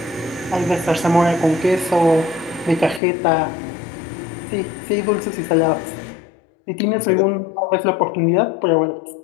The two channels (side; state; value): right; drops out; at 3.0 s